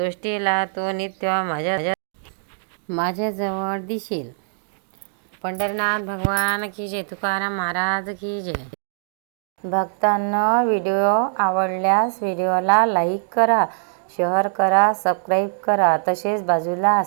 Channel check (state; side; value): silent; left; digital silence